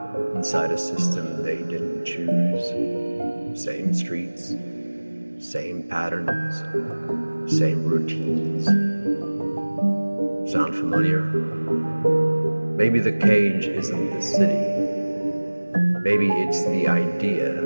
inside a system they didn't choose? Same streets, same patterns, same routines. Sound familiar? Maybe the cage isn't the city. Maybe it's the idea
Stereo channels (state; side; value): inverted; both; correlation -1.00